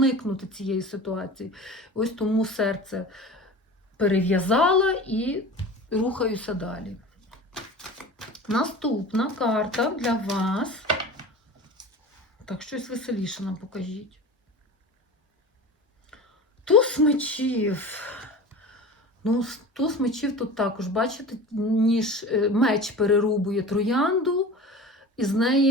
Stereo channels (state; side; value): normal; both; correlation 0.35